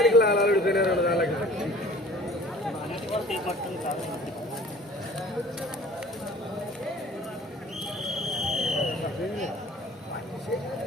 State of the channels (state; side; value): normal; both; correlation 0.48